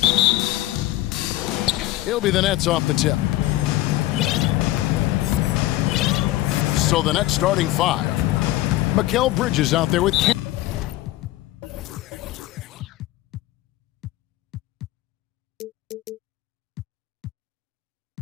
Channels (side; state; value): right; quieter; 16.1 dB